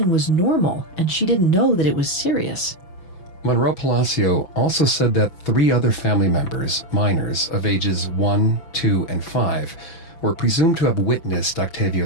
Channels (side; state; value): right; late; 6.0 ms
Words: was normal and she didn't know that it was serious. Monroe Palacio also said that 3 other family members, minors of ages 1, 2, and 5, were presumed to have witnessed